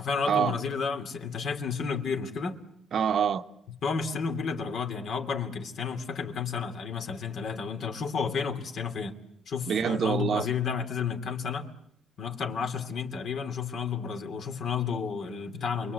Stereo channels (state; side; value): normal; both; correlation 0.62